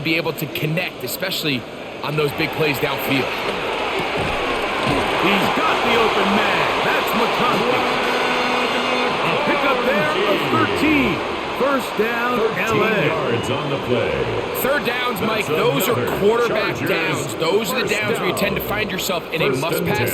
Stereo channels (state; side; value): identical; both; correlation 1.00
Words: be able to connect, especially on those big plays downfield. He's got the open man. That's McConaughey. A pickup there of 13. 1st down, 13 LA. yards on the play. 3rd downs, Mike, those are quarterback downs. Those are the downs where you tend to find yourself in a must-pass